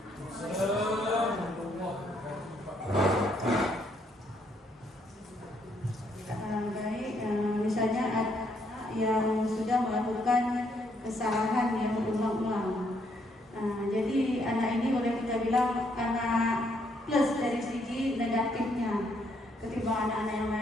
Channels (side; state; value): both; normal; correlation 0.72